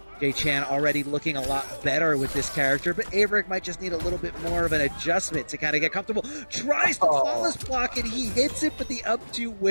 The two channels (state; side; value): inverted; both; correlation -1.00